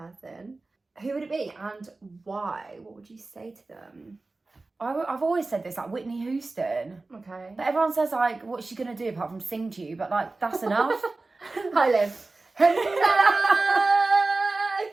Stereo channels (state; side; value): quieter; left; 3.4 dB